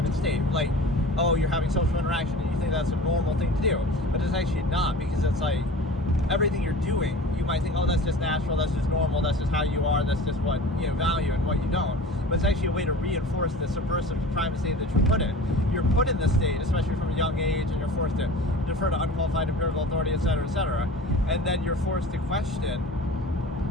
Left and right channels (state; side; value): normal; both; correlation 0.39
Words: state. Like, oh, you're having social interaction and you think that's a normal thing to do, but it's actually not, because it's like, everything you're doing, you might think, oh, that's just natural, that's just normal, that's just how you are, that's just what you value and what you don't. But it's actually a way to reinforce the subversive private state that you're put in. You're put in this state, especially from a young age, and you're forced to defer to unqualified empirical authority, etc., etc. And then you're forced to question,